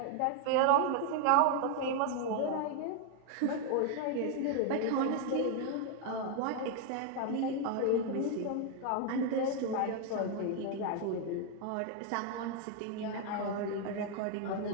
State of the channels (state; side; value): different; both; correlation 0.01